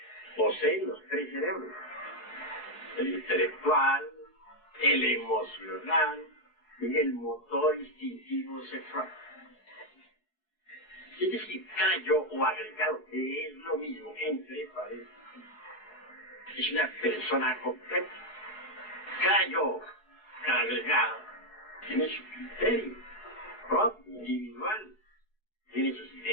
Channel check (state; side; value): late; right; 4.7 ms